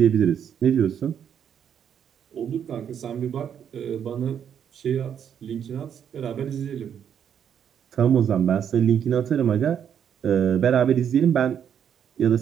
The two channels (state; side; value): quieter; left; 8.6 dB